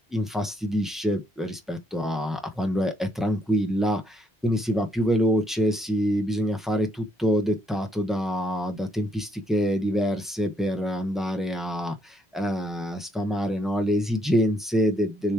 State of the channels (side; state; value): both; normal; correlation 0.72